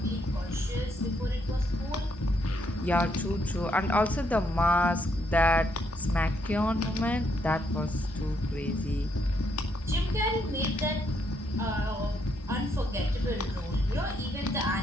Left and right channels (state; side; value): normal; both; correlation 0.75